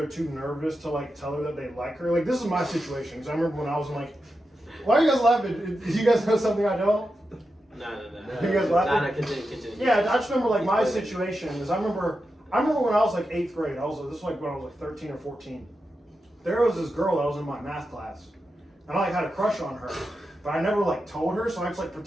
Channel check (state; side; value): normal; both; correlation 0.89